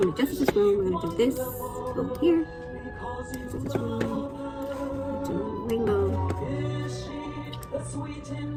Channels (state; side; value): identical; both; correlation 1.00